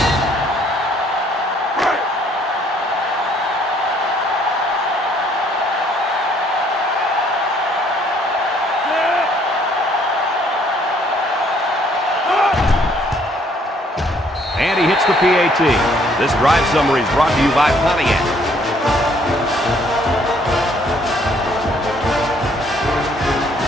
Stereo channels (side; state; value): both; normal; correlation 0.64